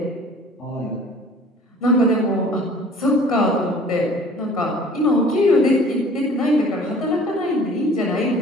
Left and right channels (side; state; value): both; normal; correlation 0.50